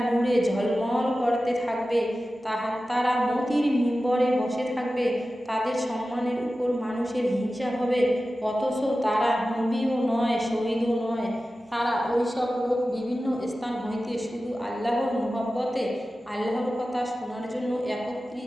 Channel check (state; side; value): normal; both; correlation 0.94